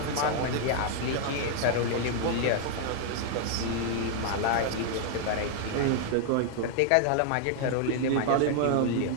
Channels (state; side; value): different; both; correlation 0.00